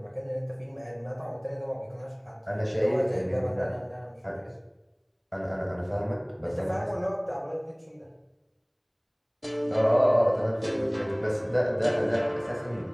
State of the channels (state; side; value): identical; both; correlation 1.00